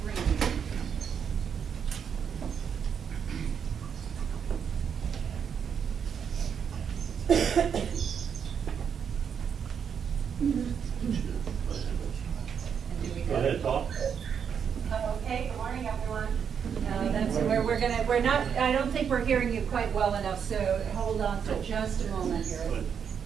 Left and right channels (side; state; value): left; quieter; 7.4 dB